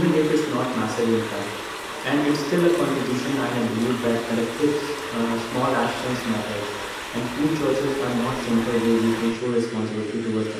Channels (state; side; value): identical; both; correlation 1.00